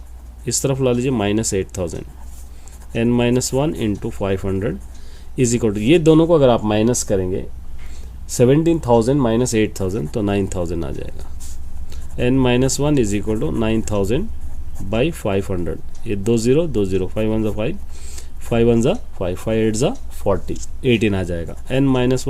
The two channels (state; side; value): identical; both; correlation 1.00